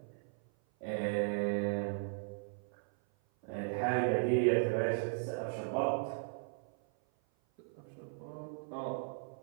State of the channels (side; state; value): left; silent; 53 dB below the other